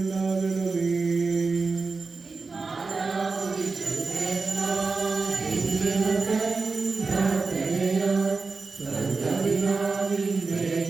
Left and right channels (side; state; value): left; quieter; 4.2 dB